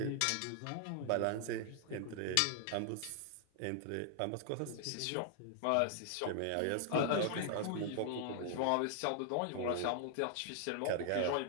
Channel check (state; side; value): different; both; correlation 0.00